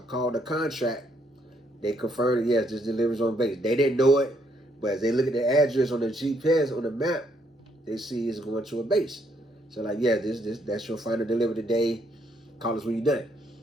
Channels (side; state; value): both; normal; correlation 0.72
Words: called the contract. They confirmed, yes, this delivers on base. They didn't know it, but as they look at the address on the GPS, on the map, they see it's going to a base. So like, yeah, that's your final delivery today. Call us when you're done.